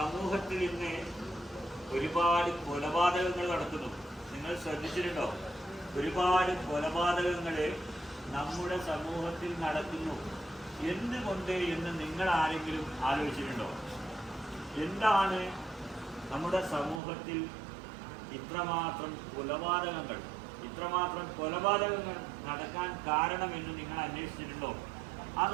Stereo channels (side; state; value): left; drops out; at 17.0 s